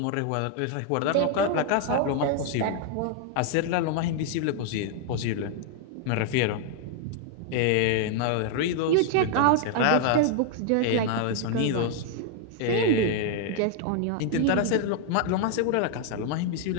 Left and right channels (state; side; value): different; both; correlation 0.00